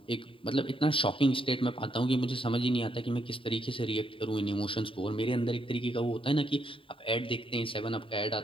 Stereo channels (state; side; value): late; right; 0.25 ms